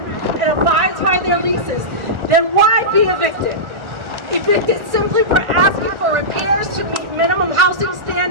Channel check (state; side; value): late; left; 1.4 ms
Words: and abides by their leases, then why be evicted? Evicted simply for asking for repairs to meet minimum housing